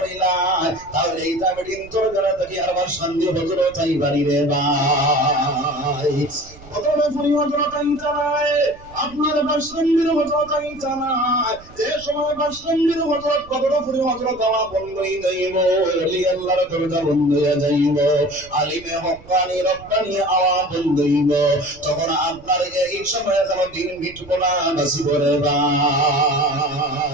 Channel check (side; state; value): right; noise; rumble, 21 dB below the sound